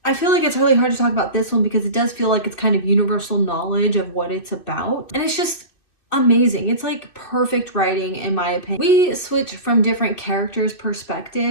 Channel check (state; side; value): late; right; 2.6 ms